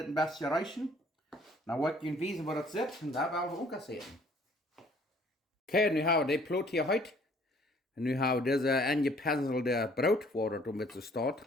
bisschen reichen. Dann wollte ich wissen, wo das sitzt. Und da werden wir auch sehen. Okay, nu haben wir die Plot hier heute. Und nu haben wir diese angepinselte Brot, wo das mit so steht,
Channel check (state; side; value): normal; both; correlation 0.59